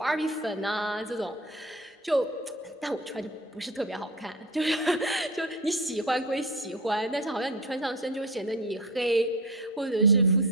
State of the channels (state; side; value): normal; both; correlation 0.31